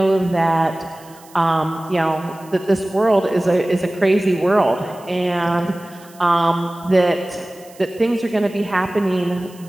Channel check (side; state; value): right; noise; hiss, 25 dB below the sound